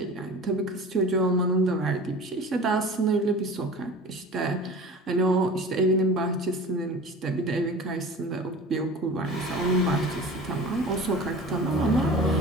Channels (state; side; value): normal; both; correlation 0.38